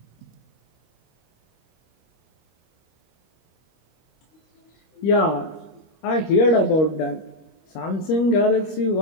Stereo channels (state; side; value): late; right; 25 ms